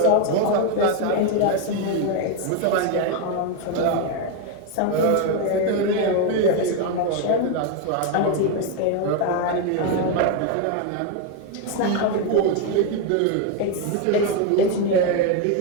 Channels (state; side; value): different; both; correlation 0.02